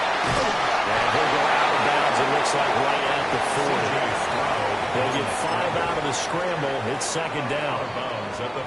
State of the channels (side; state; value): both; identical; correlation 1.00